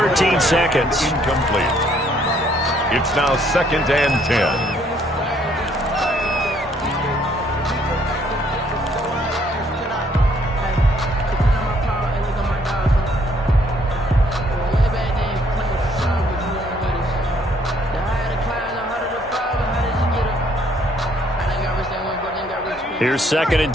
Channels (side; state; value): both; normal; correlation 0.65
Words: seconds. Incomplete. It's now 2nd and 10. Here's 2nd and